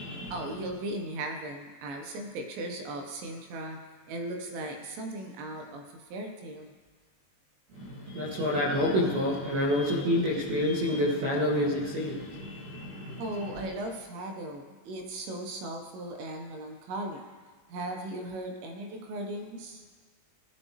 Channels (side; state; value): left; late; 21 ms